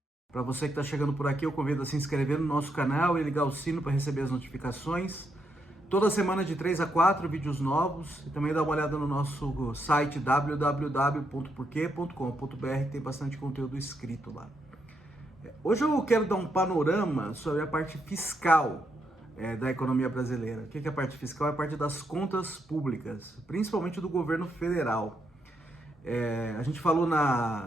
Para você que está chegando por aqui, eu convido a se inscrever no nosso canal e ligar o sino para receber as notificações. Toda semana de 3 a 4 vídeos novos e também dá uma olhada no nosso site www.porquê.com.br, tem bastante conteúdo escrito lá. Hoje eu quero dar um panorama sobre a parte fiscal da economia brasileira. O que é a parte fiscal? É a parte das contas públicas, principalmente do governo federal. A gente falou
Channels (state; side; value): normal; both; correlation 0.79